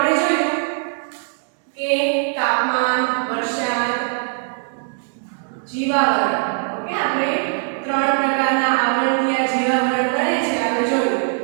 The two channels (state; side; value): silent; left; 59 dB below the other